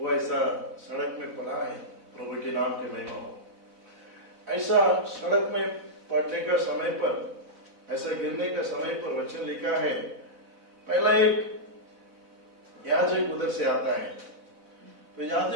ऐसा सड़क में पड़ा है। प्रभु के नाम की महिमा हो। ऐसा सड़क में पड़ने का समय पर, ऐसा गिरने का समय पर वचन लिखा है, पहला एक याजक उधर से आता है। तो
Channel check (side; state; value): left; late; 4.0 ms